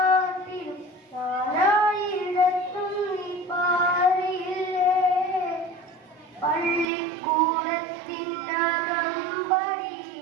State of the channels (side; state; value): left; drops out; at 6.9 s